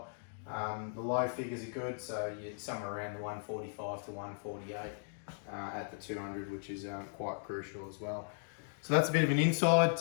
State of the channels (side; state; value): right; silent; digital silence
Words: The low figures are good, so you're somewhere around the 145 to 148 at the 200, which is quite crucial as well. So that's a bit of an insight